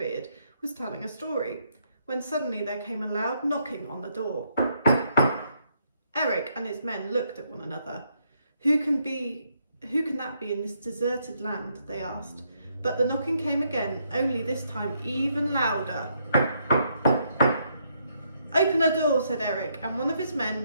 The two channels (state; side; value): inverted; both; correlation -0.75